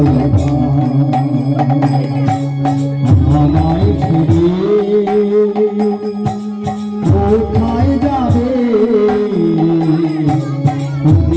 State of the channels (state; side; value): identical; both; correlation 1.00